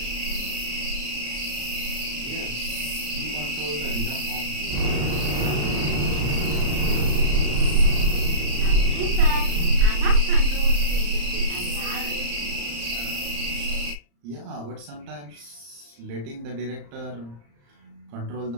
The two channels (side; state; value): left; late; 35 ms